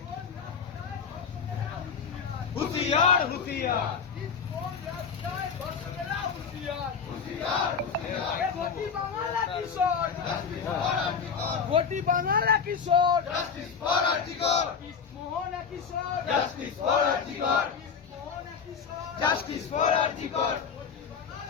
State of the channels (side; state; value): right; quieter; 6.3 dB